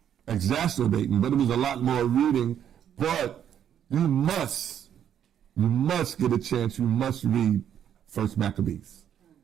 exacerbating, but it was a lot more reading. But you must get a chance. You must read 1st Maccabees.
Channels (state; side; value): quieter; left; 9.5 dB